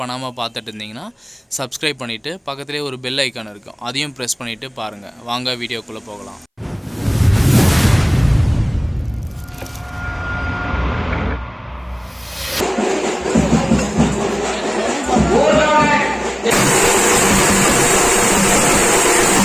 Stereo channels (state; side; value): identical; both; correlation 1.00